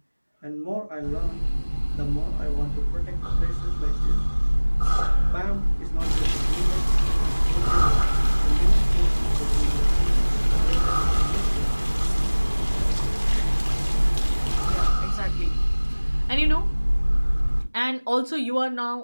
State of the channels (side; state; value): both; inverted; correlation -1.00